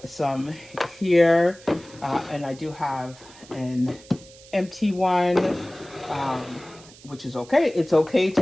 some here, and I do have an empty one, which is okay. It's okay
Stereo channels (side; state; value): right; noise; hiss, 22 dB below the sound